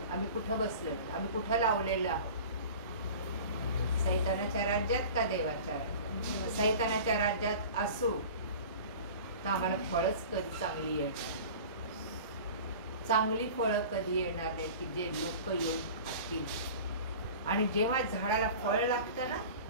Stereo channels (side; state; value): both; inverted; correlation -0.39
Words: आम्ही कुठं बसलो? आम्ही कुठं लावलेलं आहोत? सैतानाच्या राज्यात का देवाच्या राज्यात? सैतानाच्या राज्यात असू तर आम्हाला फळच कधी चांगली येणार. चांगली फळं कधी येणार नाही की जे लोक येऊन खातील. आणि जेव्हा झाडाला फळ लागतं ना,